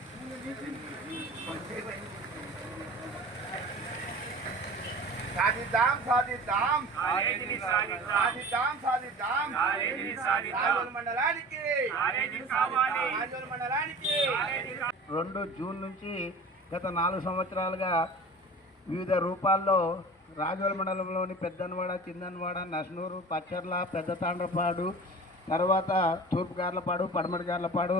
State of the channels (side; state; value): both; normal; correlation 0.39